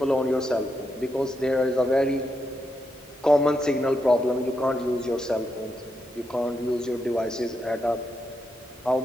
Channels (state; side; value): normal; both; correlation 0.83